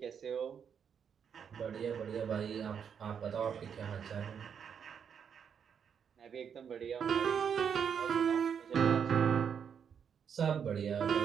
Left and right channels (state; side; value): quieter; left; 7.5 dB